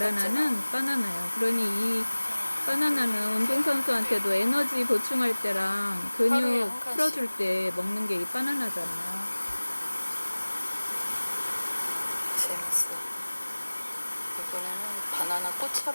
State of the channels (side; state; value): both; inverted; correlation -1.00